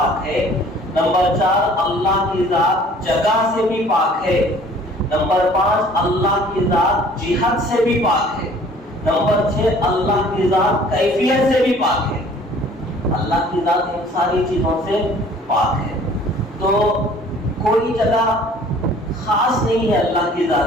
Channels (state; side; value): normal; both; correlation 0.53